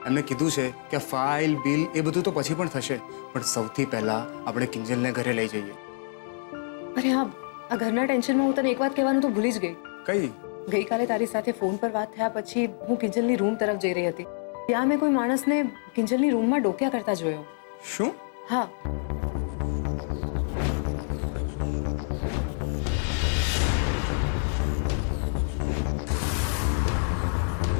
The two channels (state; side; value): silent; right; 58 dB below the other